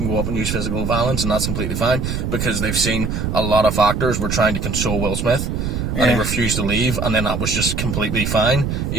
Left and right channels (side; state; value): right; noise; rumble, 2 dB below the sound